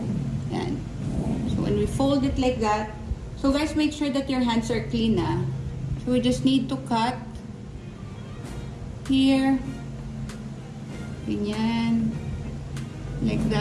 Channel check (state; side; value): identical; both; correlation 1.00